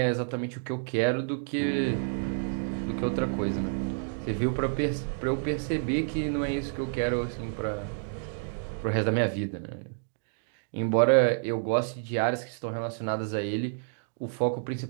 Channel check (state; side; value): silent; left; digital silence